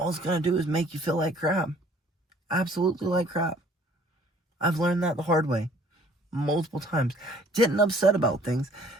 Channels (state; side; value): normal; both; correlation 0.56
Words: it's going to do is make you feel like crap. Absolutely like crap. I've learned that the hard way. Multiple times. Getting upset about things